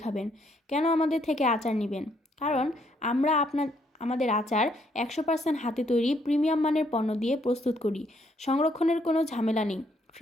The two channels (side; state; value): both; normal; correlation 0.71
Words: খাবেন। কেন আমাদের থেকে আচার নেবেন? কারণ আমরা আমাদের আচার 100% হাতে তৈরি প্রিমিয়াম মানের পণ্য দিয়ে প্রস্তুত করি। সংরক্ষণের কোনো ঝামেলা নেই,